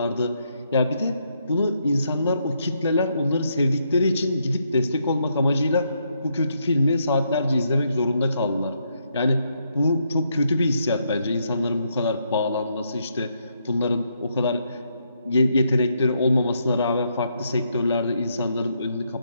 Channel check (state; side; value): inverted; both; correlation -0.77